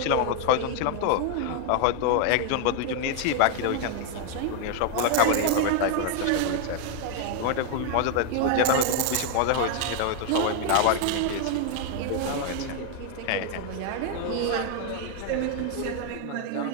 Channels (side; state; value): both; different; correlation 0.00